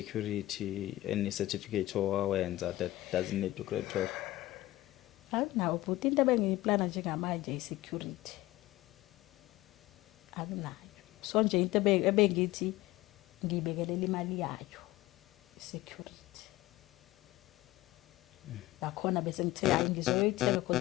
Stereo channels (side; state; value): right; quieter; 17.2 dB